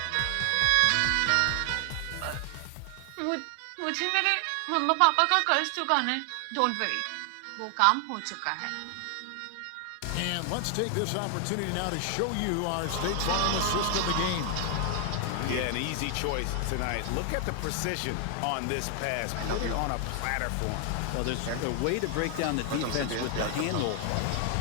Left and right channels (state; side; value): different; both; correlation 0.00